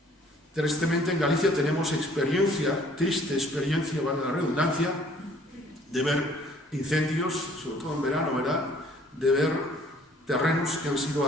Tristemente en Galicia tenemos triste experiencia, vale la redundancia, de ver incendios, sobre todo en verano, ¿verdad? De ver terrenos que han sido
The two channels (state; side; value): normal; both; correlation 0.57